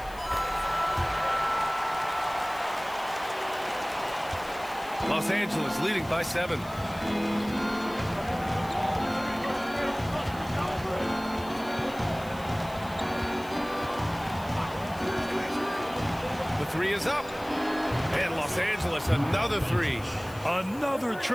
Los Angeles leading by 7. The 3 is up. And Los Angeles another 3. Another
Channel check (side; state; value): left; noise; hiss, 20 dB below the sound